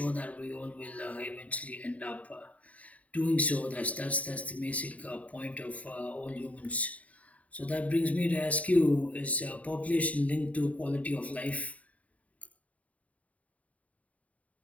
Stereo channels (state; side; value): late; right; 0.069 ms